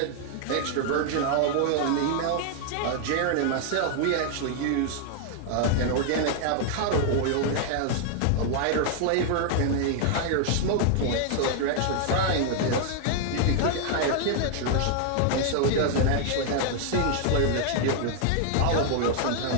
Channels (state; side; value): different; both; correlation 0.00